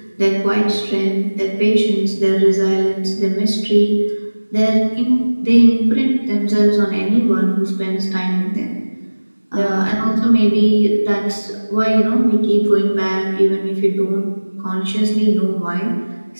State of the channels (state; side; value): inverted; both; correlation -1.00